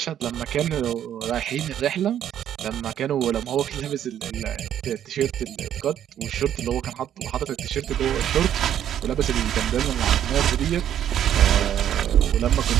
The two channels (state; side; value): quieter; left; 10.4 dB